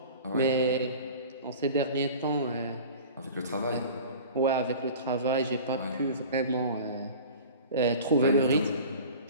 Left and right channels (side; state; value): both; inverted; correlation -0.40